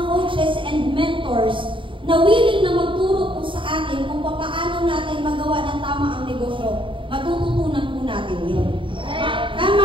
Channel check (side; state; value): left; late; 0.25 ms